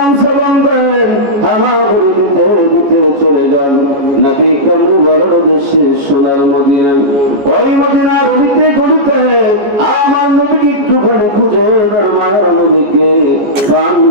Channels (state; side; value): late; left; 14 ms